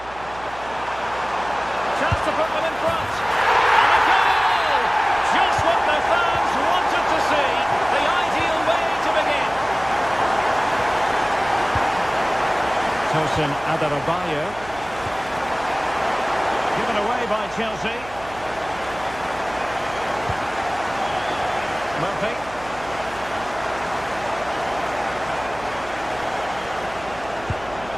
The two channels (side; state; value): right; noise; hum, 18 dB below the sound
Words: Chance to put them in front. And a goal! Just what the fans wanted to see. The ideal way to begin. Tosin Adarabioyo. Given away by Chelsea. Murphy.